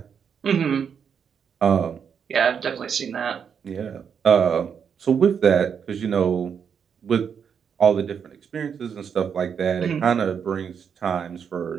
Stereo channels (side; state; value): left; quieter; 7.2 dB